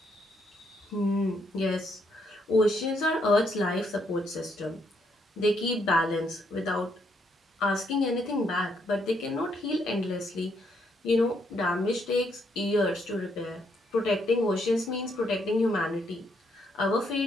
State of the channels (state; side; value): normal; both; correlation 0.74